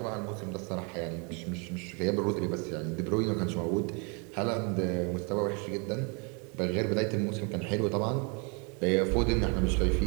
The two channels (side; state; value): left; quieter; 33.9 dB